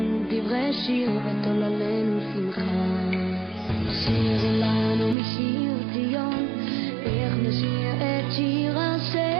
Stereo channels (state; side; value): drops out; left; at 5.2 s